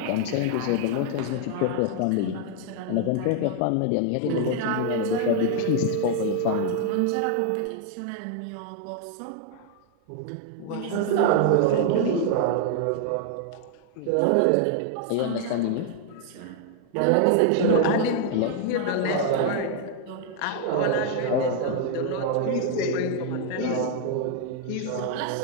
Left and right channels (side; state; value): both; different; correlation 0.00